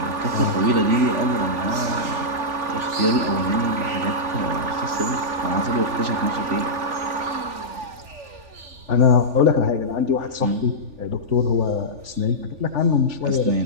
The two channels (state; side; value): late; left; 3.4 ms